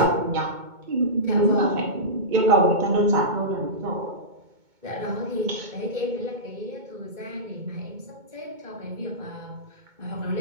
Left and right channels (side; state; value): left; late; 2.2 ms